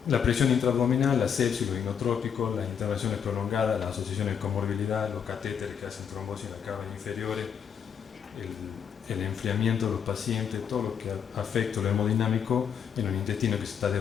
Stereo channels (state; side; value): quieter; right; 7.7 dB